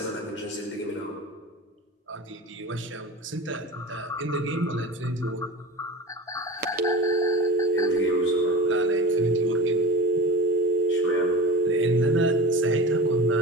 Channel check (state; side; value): normal; both; correlation 0.32